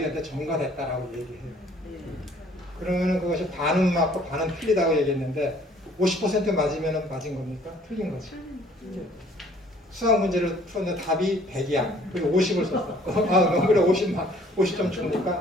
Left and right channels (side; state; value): both; normal; correlation 0.57